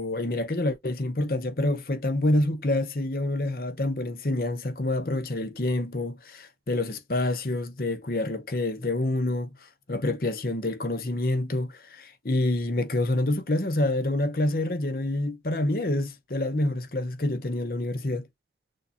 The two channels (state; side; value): normal; both; correlation 0.64